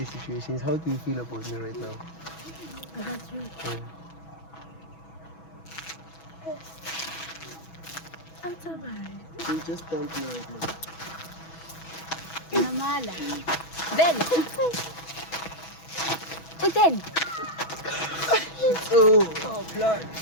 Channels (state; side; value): late; right; 6.1 ms